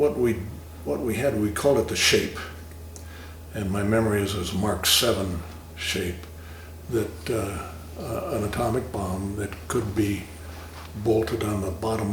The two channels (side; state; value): both; identical; correlation 1.00